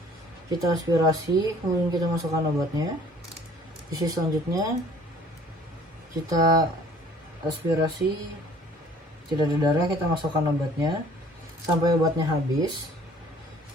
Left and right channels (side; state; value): both; normal; correlation 0.54